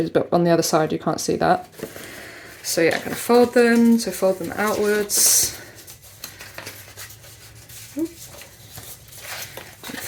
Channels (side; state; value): both; identical; correlation 1.00